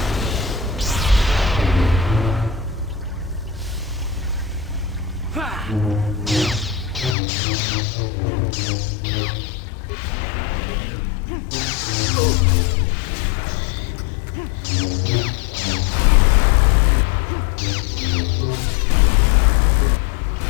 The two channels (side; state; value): right; drops out; at 7.2 s